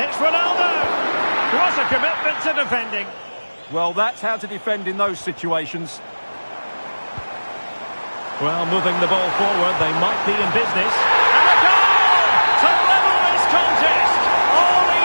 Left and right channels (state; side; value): inverted; both; correlation -1.00